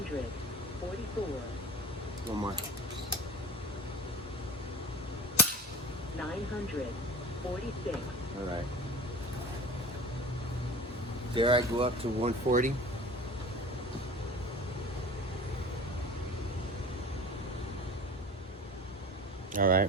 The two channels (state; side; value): normal; both; correlation 0.37